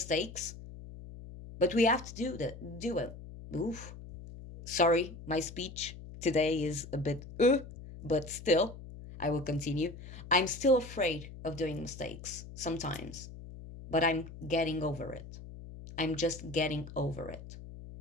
But we have to do it. Oof. Sorry, my speech today is a bit but still, I will continue. I'm still afraid of doing mistakes sometimes, but I'm getting over it. I'm just getting over it.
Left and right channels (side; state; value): left; noise; hum, 14 dB below the sound